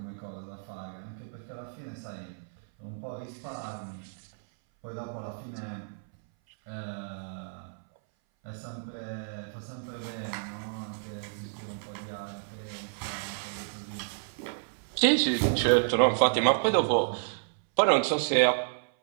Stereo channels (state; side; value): silent; left; 57 dB below the other